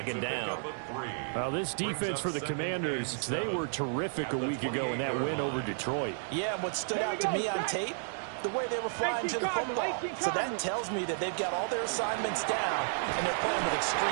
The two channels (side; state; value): left; silent; digital silence